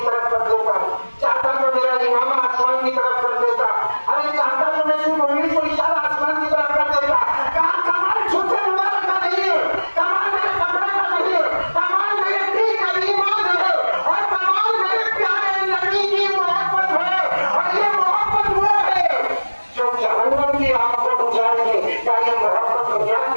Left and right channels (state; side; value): inverted; both; correlation -1.00